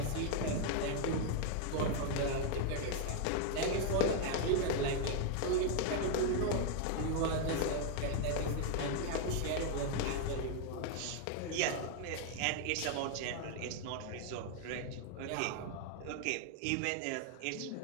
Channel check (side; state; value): both; different; correlation 0.00